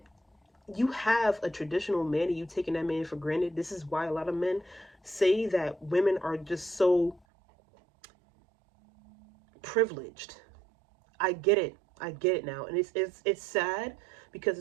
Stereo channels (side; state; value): left; drops out; at 7.2 s